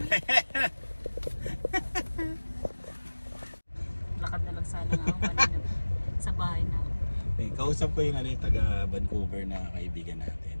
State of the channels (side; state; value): both; inverted; correlation -1.00